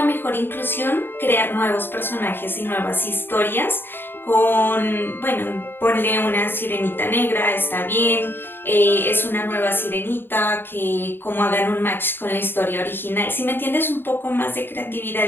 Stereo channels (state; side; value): late; right; 0.10 ms